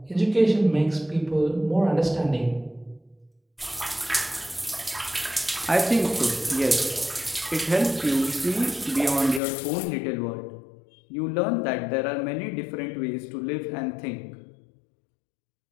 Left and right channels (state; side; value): drops out; right; at 9.4 s